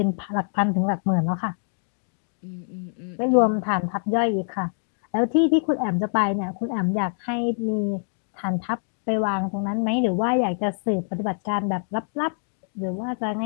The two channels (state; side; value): silent; right; digital silence